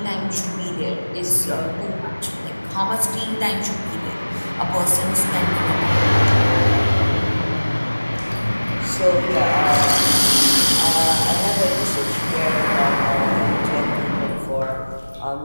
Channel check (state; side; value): inverted; both; correlation -1.00